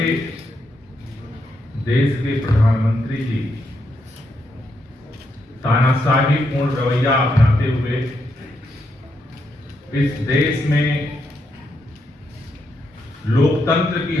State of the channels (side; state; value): both; normal; correlation 0.80